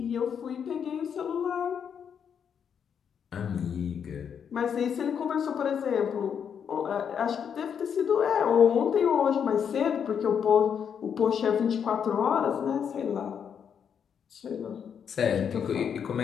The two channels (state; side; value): quieter; right; 7.6 dB